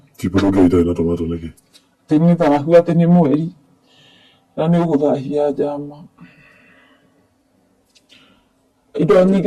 Chipo ndũngĩarĩire na tomato nĩkĩ? Atĩ nĩ thahu, atĩ nĩ mweri na nĩ ũgũthahia njama. Indo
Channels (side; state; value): both; identical; correlation 1.00